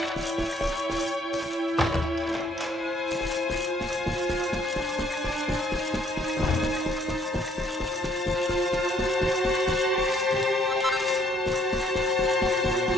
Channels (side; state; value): both; normal; correlation 0.65